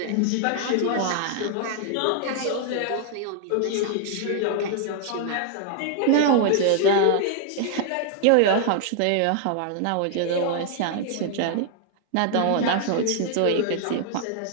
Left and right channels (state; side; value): different; both; correlation 0.00